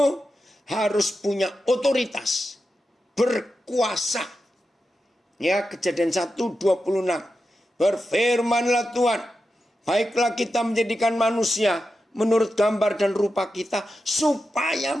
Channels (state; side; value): normal; both; correlation 0.90